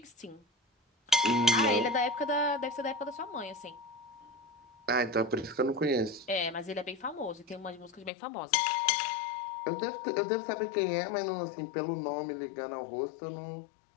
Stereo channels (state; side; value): drops out; right; at 8.1 s